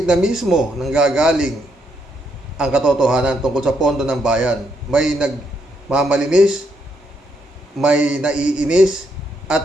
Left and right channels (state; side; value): normal; both; correlation 0.76